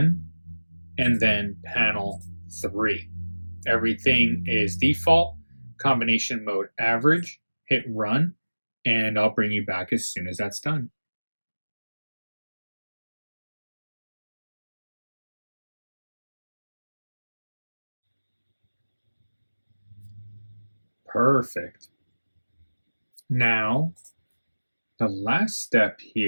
and then panel 3. Everything is default, combination mode average, hit run, and I'll bring you back as soon as that's done. Perfect. Now, the last step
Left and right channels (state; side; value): inverted; both; correlation -1.00